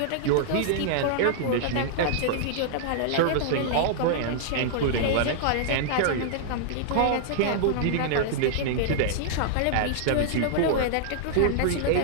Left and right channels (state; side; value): different; both; correlation -0.01